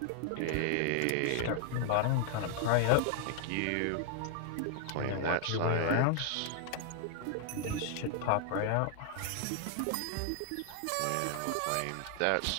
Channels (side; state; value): both; different; correlation -0.01